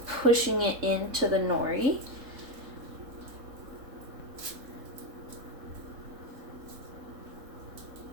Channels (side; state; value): left; late; 3.7 ms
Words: pushing it into the nori.